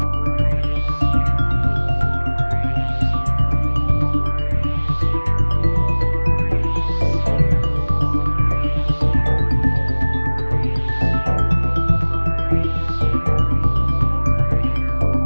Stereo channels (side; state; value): both; inverted; correlation -1.00